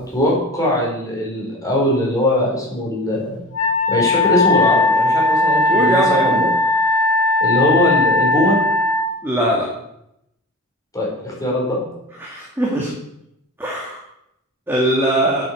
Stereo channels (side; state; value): both; normal; correlation 0.34